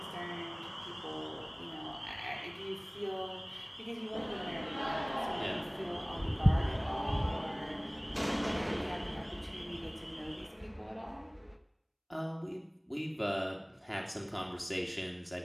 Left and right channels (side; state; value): both; identical; correlation 1.00